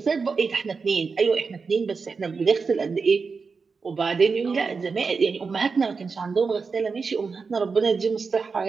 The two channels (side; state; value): left; quieter; 4.9 dB